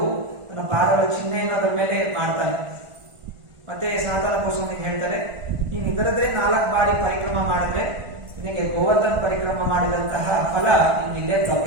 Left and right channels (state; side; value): late; left; 1.5 ms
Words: ತನ್ನ ಪಾದಗಳ ಚಿಹ್ನೆಯನ್ನು ಅದರ ಮೇಲೆ ಮಾಡ್ತಾನೆ. ಮತ್ತೆ ಸನಾತನ ಗೋಸ್ವಾಮಿಗೆ ಹೇಳ್ತಾರೆ, ನೀನು ಇದರದ್ರೆ 4 ಬಾರಿ ಪರಿಕ್ರಮ ಮಾಡಿದ್ರೆ ನಿನಗೆ ಗೋವರ್ಧನ ಪರಿಕ್ರಮ ಮಾಡಿದಂತಹ ಫಲ ನಿನ್ನಿಲ್ಲೇ